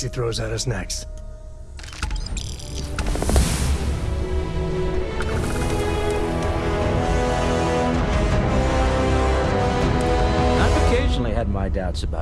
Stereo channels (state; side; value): identical; both; correlation 1.00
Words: throws at us next. I've occasionally had my doubts